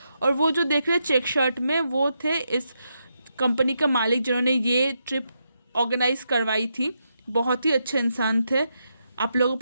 और वो जो देख रहे हैं चेक शर्ट में, वो थे इस कंपनी का मालिक जिन्होंने ये ट्रिप ऑर्गेनाइज करवाई थी। बहुत ही अच्छे इंसान थे, आप लोगों को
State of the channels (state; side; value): inverted; both; correlation -0.83